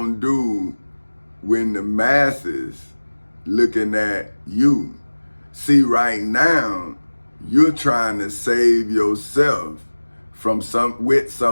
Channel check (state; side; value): inverted; both; correlation -1.00